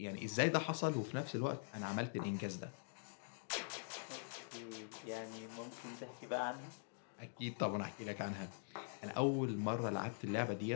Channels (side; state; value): right; silent; digital silence